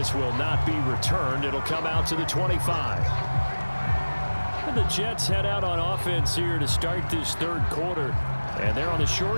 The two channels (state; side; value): inverted; both; correlation -1.00